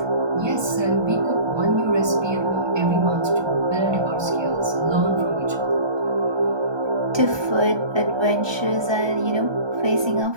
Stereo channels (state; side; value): late; left; 1.2 ms